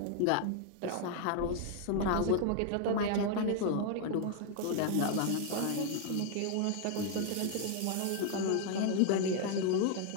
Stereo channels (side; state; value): both; different; correlation 0.00